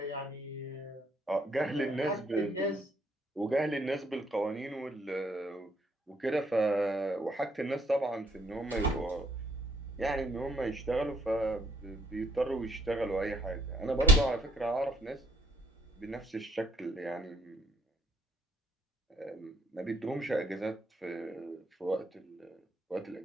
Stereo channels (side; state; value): both; normal; correlation 0.68